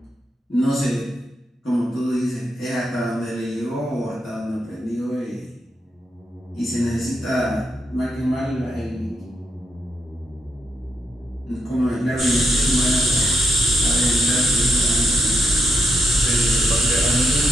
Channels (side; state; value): both; normal; correlation 0.80